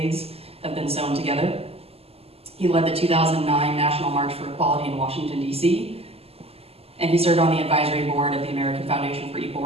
have been sewn together. He led the 2009 National March for Equality in Washington, D.C., and he served on the advisory board of the American Foundation for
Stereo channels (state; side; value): late; left; 0.29 ms